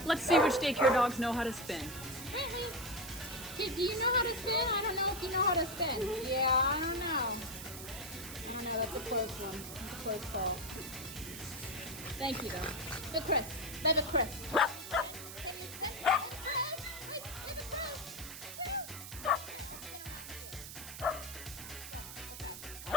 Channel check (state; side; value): noise; right; hiss, 11 dB below the sound